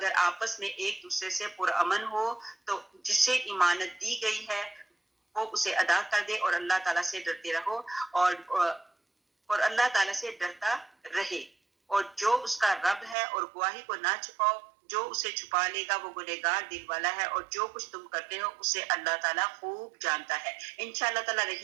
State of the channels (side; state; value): left; drops out; at 13.2 s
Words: آپس میں ایک دوسرے سے پرامن ہو تو جس سے امانت دی گئی ہے وہ اسے ادا کر دے اور اللہ تعالیٰ سے ڈرتے رہو, اور اللہ تعالیٰ سے ڈرتا رہے, اور جو اس کا رب ہے, اور گواہی کو نہ چھپاؤ, جو اسے چھپا لے گا وہ گنہگار دل والا ہے, اور جو کچھ تم کرتے ہو اسے اللہ تعالیٰ خوب جانتا ہے. انشاءاللہ تعالیٰ